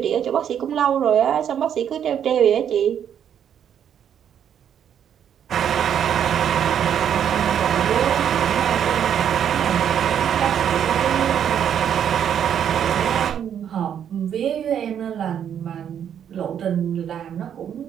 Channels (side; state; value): left; quieter; 9.0 dB